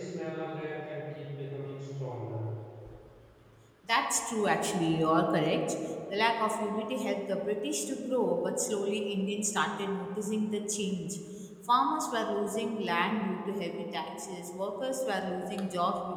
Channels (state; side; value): identical; both; correlation 1.00